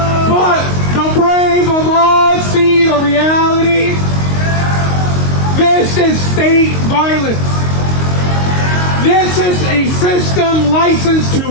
But the brave of us see the reality. This is state violence. This is a system licensed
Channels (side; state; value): right; late; 22 ms